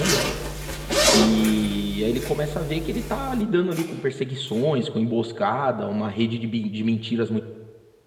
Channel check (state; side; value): identical; both; correlation 1.00